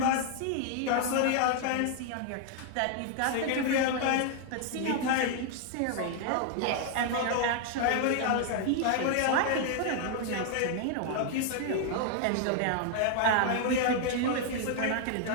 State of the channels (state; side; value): different; both; correlation 0.00